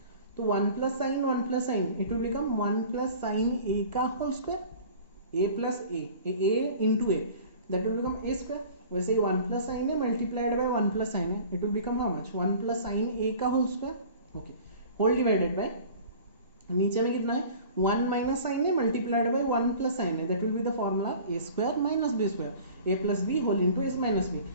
तो 1 plus sine 1 plus sine it will become 1 plus sine ए का whole square, A plus a into a, that will become A square. वैसे ही 1 plus sine A multiplied by 1 plus sine a it will become how much 1 plus sine ए का whole square, okay, whole divided by, नीचे में कितना है 1 minus sine A multiplied by 1 plus sine a, that will be the formula A square minus B square, A plus B whole into A minus b.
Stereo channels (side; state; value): both; inverted; correlation -0.44